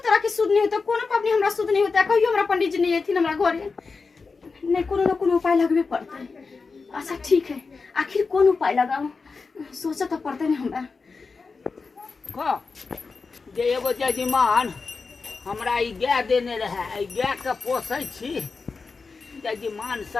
तरह के शुद्ध नहीं होता कोनो पबनी हमरा शुद्ध नहीं होता कहियो हमरा पंडित जी नहीं एथिन हमरा घरे नहीं कोनो न कोनो उपाय लगबे पड़ते अच्छा ठीक है आखिर कौन उपाय लगाऊं सोचा तो पड़ते नहीं हमरा का जे एगो जजमान हमरा ई गाय देने रहे ई गाय के पोसै छी जजमान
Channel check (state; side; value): quieter; right; 4.5 dB